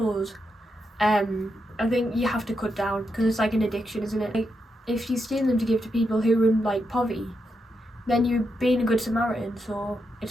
I think you have to cut down because it's like an addiction, isn't it? Like if you steal them to give to people who are in like poverty, then you're being a good Samaritan, so it's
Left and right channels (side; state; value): both; normal; correlation 0.84